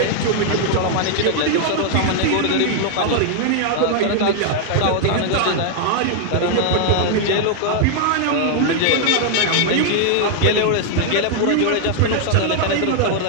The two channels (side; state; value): both; different; correlation 0.00